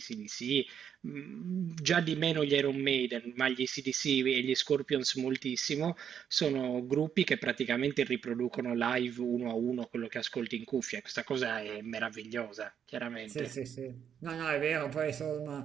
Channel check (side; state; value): left; quieter; 8.3 dB